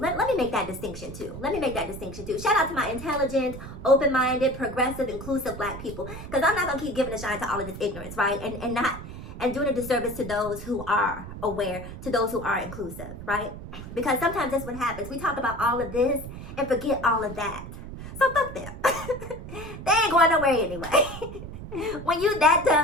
me make that distinction too. Shout out to my intelligent, open-minded, progressive, inclusive black people. Because I'm not going to keep giving a shine to all of this ignorance, right? And doing a disservice to those who are aware, to those who are inclusive, right? Because sometimes that's what happens. We talk about all of this and forget all of that. So fuck them. They ain't going nowhere anyway. When you that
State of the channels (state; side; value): noise; right; rumble, 11 dB below the sound